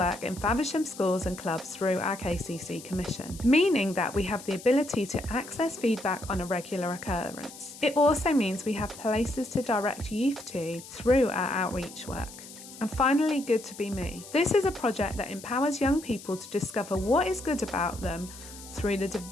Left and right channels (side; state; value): left; noise; hiss, 16 dB below the sound